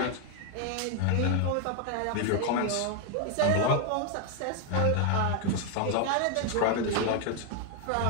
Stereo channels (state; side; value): different; both; correlation 0.01